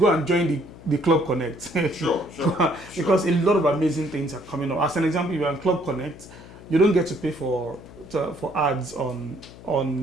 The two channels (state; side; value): noise; left; hum, 18 dB below the sound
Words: and join the Club Connect. Sure. Because a lot of amazing things are coming up. As an example, if you're on Club Connect, you don't get to pay for ads on